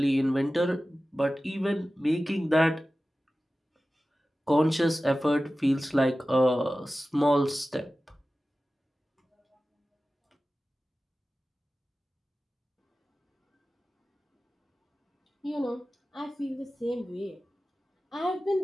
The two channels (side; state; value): both; normal; correlation 0.95